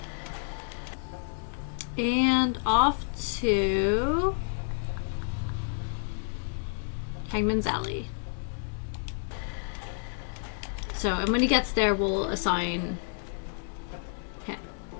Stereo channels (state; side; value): silent; right; 58 dB below the other